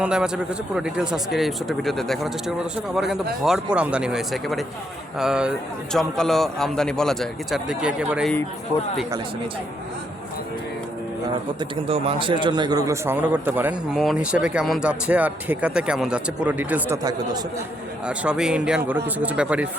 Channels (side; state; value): both; normal; correlation 0.75